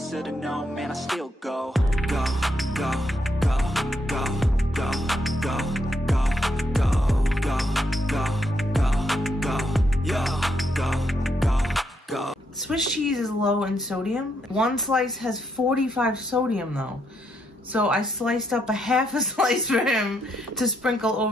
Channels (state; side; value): normal; both; correlation 0.77